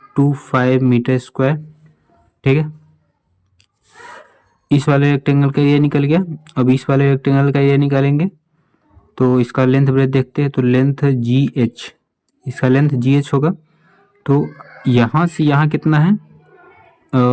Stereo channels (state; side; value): identical; both; correlation 1.00